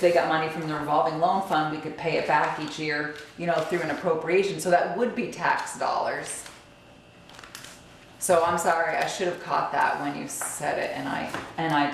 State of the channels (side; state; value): both; identical; correlation 1.00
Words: got money from the revolving loan fund, we could pay it back each year, you know, through an appropriation. So that would be tax dollars. So I'm sorry, I should have caught that when you said it, and I